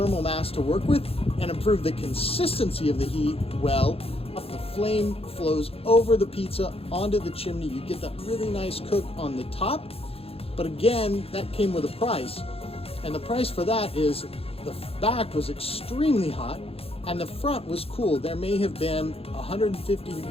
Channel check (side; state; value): right; late; 0.28 ms